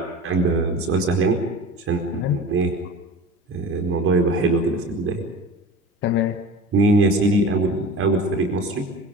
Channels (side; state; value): both; normal; correlation 0.35